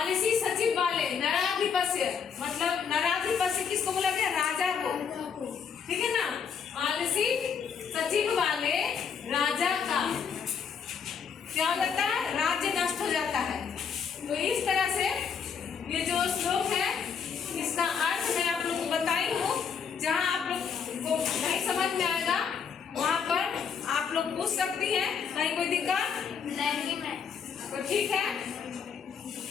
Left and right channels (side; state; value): right; quieter; 6.7 dB